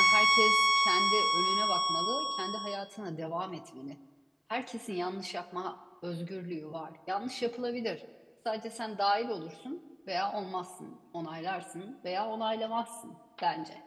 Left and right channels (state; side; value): identical; both; correlation 1.00